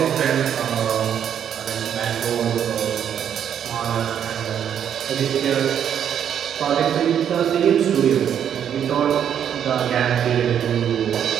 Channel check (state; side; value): quieter; left; 9.0 dB